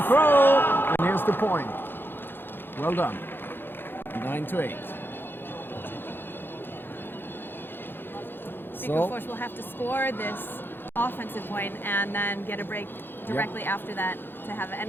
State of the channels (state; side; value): late; right; 0.10 ms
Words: throw, and here's the point. Well done. 9-8. So, Viksjöfors will have to score this offensive point and then get a break directly after that to have